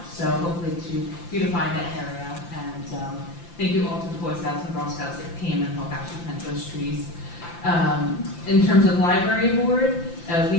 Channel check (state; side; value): late; right; 5.8 ms